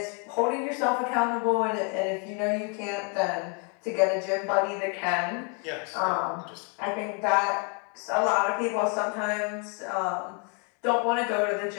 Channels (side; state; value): right; quieter; 35.7 dB